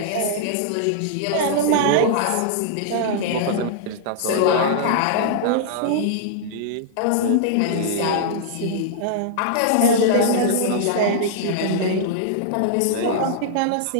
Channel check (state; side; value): different; both; correlation -0.02